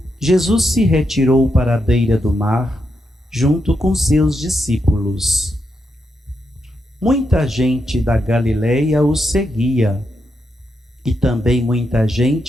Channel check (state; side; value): normal; both; correlation 0.84